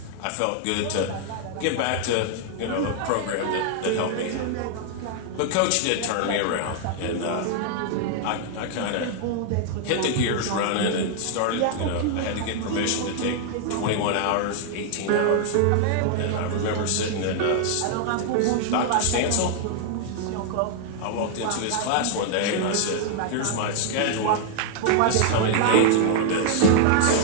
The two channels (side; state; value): both; different; correlation 0.00